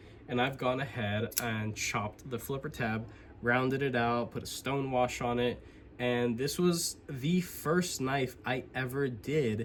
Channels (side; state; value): both; identical; correlation 1.00